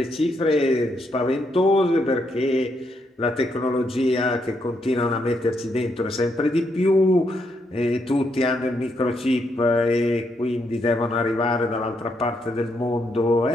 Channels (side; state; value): both; normal; correlation 0.77